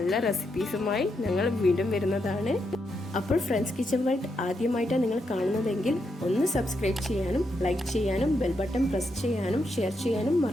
റെസിപ്പീസുമായി ഞങ്ങൾ വീണ്ടും വരുന്നതാണ്. അപ്പോൾ ഫ്രണ്ട്സ് കിച്ചൺ വേൾഡ് ആദ്യമായിട്ടാണ് നിങ്ങൾ കാണുന്നതെങ്കിൽ ഒന്ന് സബ്സ്ക്രൈബ് ചെയ്യാനും ലൈക്ക് ചെയ്യാനും ബെൽ ബട്ടൺ പ്രസ് ചെയ്യാനും ഷെയർ ചെയ്യാനും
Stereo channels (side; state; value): both; normal; correlation 0.82